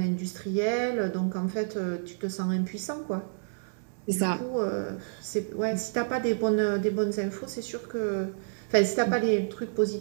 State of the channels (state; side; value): silent; left; digital silence